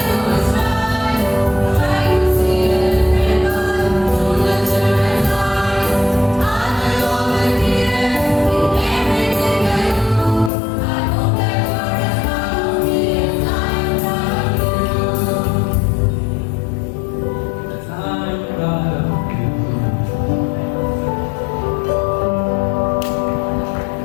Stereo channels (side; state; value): right; drops out; at 10.5 s